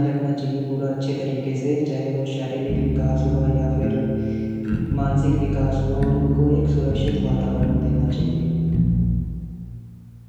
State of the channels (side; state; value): both; identical; correlation 1.00